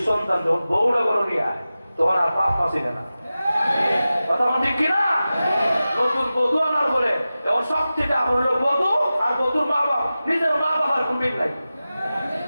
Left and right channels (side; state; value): both; inverted; correlation -0.95